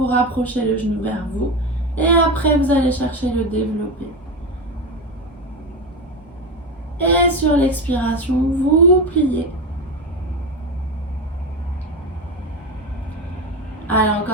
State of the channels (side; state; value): both; normal; correlation 0.19